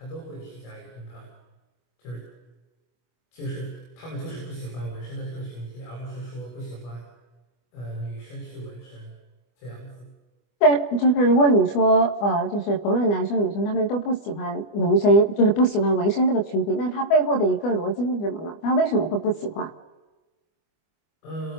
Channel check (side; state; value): right; late; 25 ms